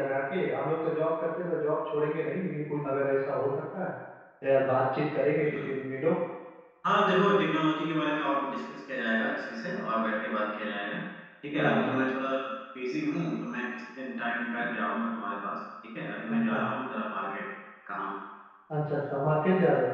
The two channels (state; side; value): identical; both; correlation 1.00